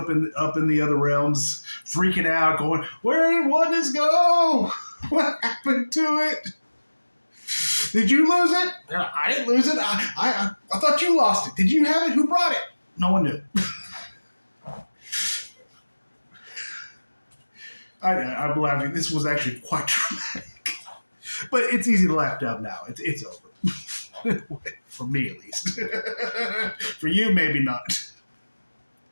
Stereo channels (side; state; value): both; inverted; correlation -1.00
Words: in the other realms, freaking out, going, "Where did oneness go? What happened to it? Did you lose it? I didn't lose it. I thought you lost it. Did you have it? Who brought it? No one knew." I'm laughing. This was actually quite dramatic, but it's easy to laugh down now. It's over. For me, at least. For you, maybe not.